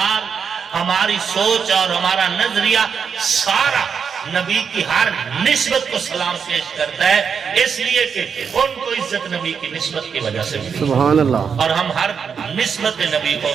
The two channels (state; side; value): quieter; left; 6.5 dB